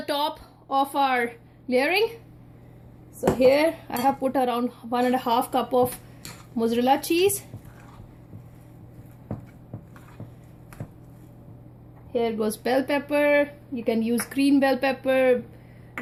top of our layering. So here I have put around 1.5 cup of mozzarella cheese. Here goes bell pepper. You can use green bell pepper,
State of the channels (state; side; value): identical; both; correlation 1.00